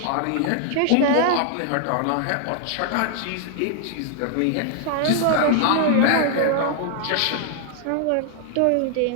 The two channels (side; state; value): both; different; correlation 0.00